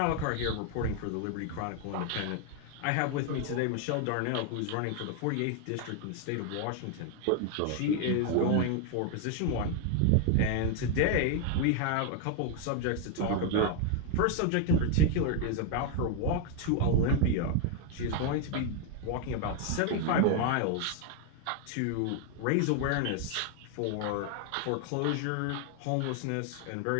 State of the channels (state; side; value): different; both; correlation 0.00